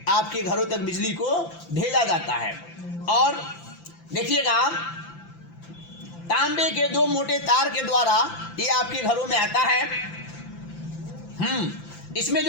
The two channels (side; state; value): right; late; 5.9 ms